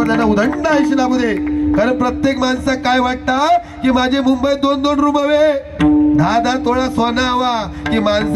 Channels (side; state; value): both; identical; correlation 1.00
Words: त्यांना उदंड आयुष्य लाभू दे. कारण प्रत्येक माणसाक काय वाटतं की माझे मुंबईत 2-2 रूम हवे, 10-10 तोळा सोना हवा, की